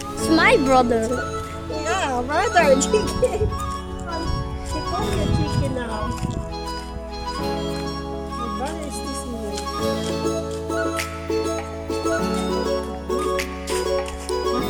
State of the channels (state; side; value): identical; both; correlation 1.00